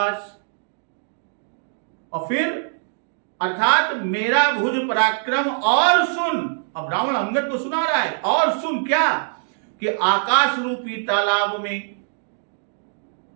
और फिर अर्थात मेरा भुज पराक्रम और सुन। अब रावण अंगद को सुना रहा है, और सुन क्या कि आकाश रूपी तालाब में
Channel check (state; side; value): silent; left; digital silence